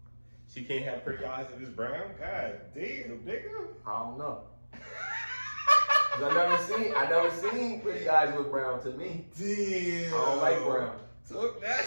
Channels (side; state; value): both; inverted; correlation -1.00